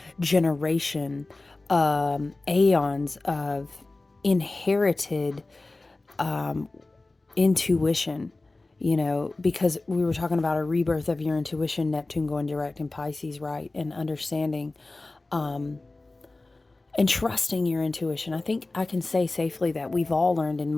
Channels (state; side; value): quieter; right; 3.1 dB